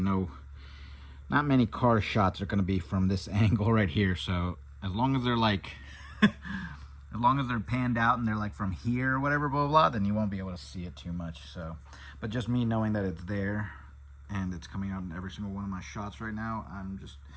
many car shots are going to be from this angle right here. So as long as they're like as long as they're panned out and they're like from here or whatever, blah, blah, blah, then you won't be able to see it too much. So, but just me knowing that it's there and it's coming out in every single one of my shots right now, I'm just,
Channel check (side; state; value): both; identical; correlation 1.00